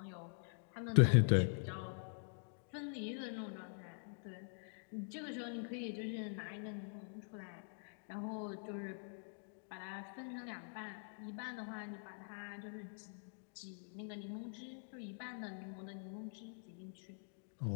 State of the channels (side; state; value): right; silent; digital silence